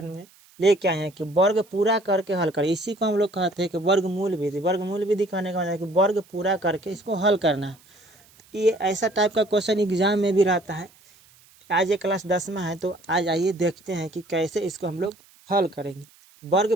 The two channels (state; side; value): noise; right; hiss, 28 dB below the sound